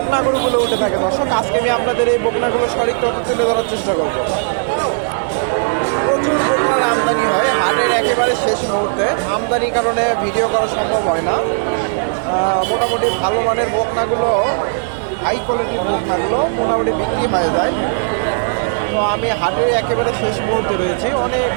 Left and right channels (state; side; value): silent; left; digital silence